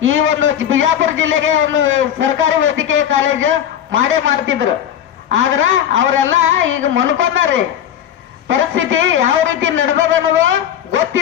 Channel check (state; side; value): quieter; right; 10.0 dB